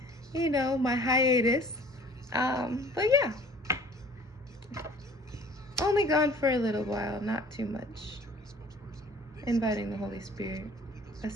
my hiatus. But yeah, only gone for a little while, not too much. Inviting the Holy Spirit,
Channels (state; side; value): normal; both; correlation 0.50